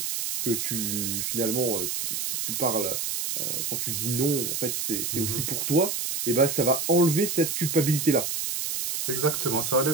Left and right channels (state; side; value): noise; right; hiss, 2 dB below the sound